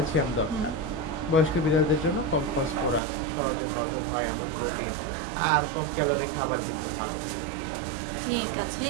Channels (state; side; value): drops out; left; at 3.0 s